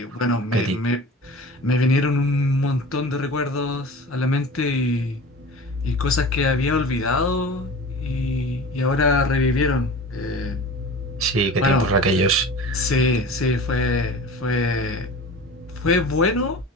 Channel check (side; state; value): both; normal; correlation 0.36